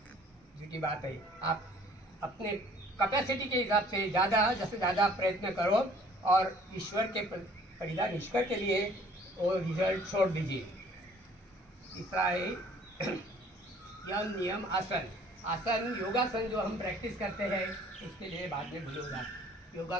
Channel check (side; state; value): both; normal; correlation 0.55